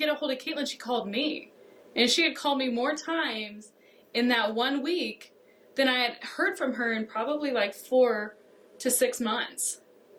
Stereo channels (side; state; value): both; identical; correlation 1.00